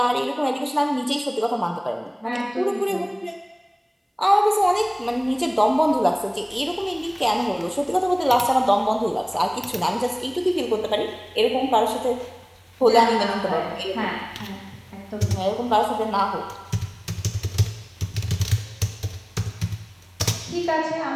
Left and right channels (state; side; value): identical; both; correlation 1.00